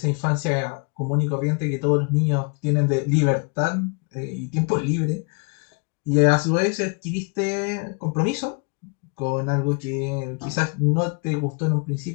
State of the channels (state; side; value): quieter; right; 35.0 dB